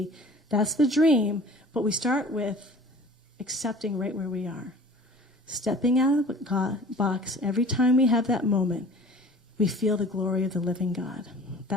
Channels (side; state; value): both; normal; correlation 0.45